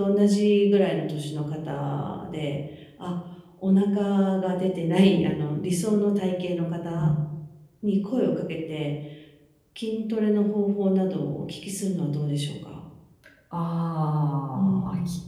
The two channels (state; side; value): identical; both; correlation 1.00